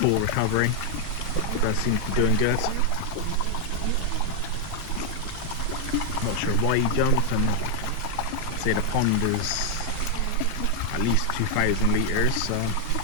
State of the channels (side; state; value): both; different; correlation 0.00